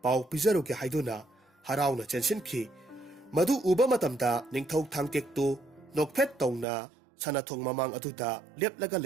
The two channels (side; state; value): left; drops out; at 6.7 s